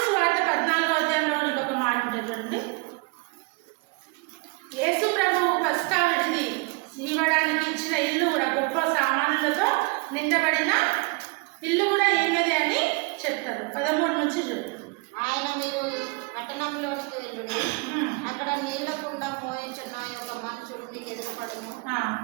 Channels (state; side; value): quieter; left; 28.8 dB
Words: సువార్త 14వ అధ్యాయంలో ఇంకొక మాట చూడండి. యేసు ప్రభువు పస్కా విడిది ఇవ్వడానికి ఇచ్చిన ఇల్లు కూడా గొప్ప సామానులతో నిండబడిన ఇల్లు కూడా ఏమిది అని చెప్తారు. 13 నుంచి చూడండి. ఆయన మీరు పట్టణంలోనికి వెళ్ళుడి, అక్కడ నీళ్ల కుండ మోయించున్న ఒక మనుషుడు మీకు ఎదురుపడను.